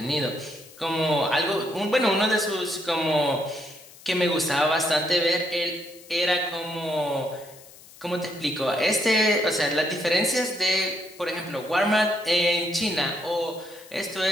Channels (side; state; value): left; noise; hiss, 21 dB below the sound